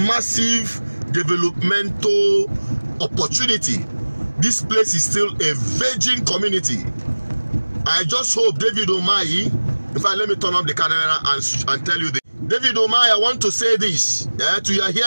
developmental opportunity. This place is still a virgin community. I just hope David Umeahi, in fact, let me turn up the camera and tell you this. David Umeahi, I want to say this to your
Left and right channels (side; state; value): both; inverted; correlation -1.00